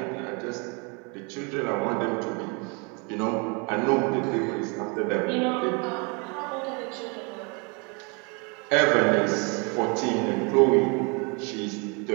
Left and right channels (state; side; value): quieter; left; 32.2 dB